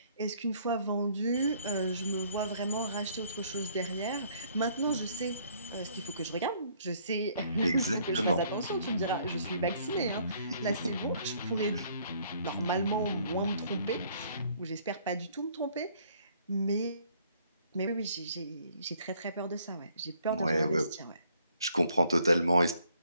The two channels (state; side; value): inverted; both; correlation -0.63